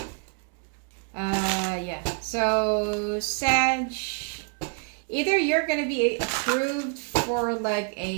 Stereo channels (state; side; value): quieter; left; 40.0 dB